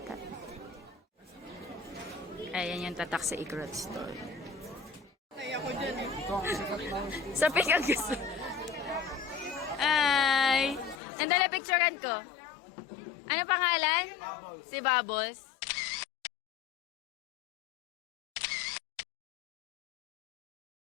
Ayan yung tatak sa Igorot store. Sa pick ang gusto. Ay! Nandala picturean ko. Ano pangalan? Si Bubbles.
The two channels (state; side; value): drops out; right; at 11.0 s